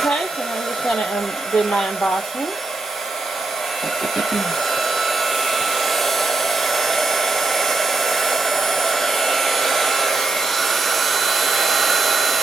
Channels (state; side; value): quieter; left; 3.3 dB